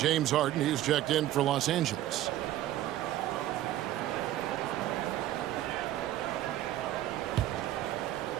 Harden, he's checked in for Los Angeles.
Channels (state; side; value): quieter; left; 13.6 dB